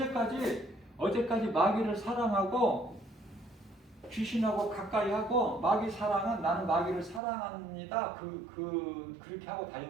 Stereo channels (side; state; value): left; drops out; at 7.2 s